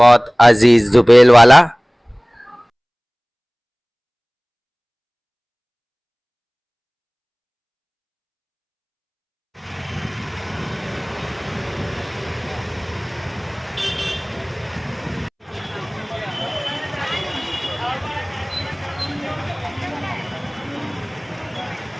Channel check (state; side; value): identical; both; correlation 1.00